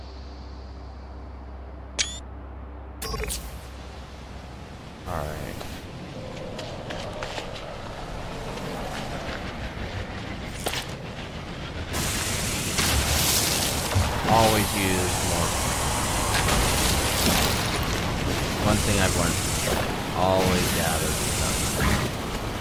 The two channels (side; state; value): both; identical; correlation 1.00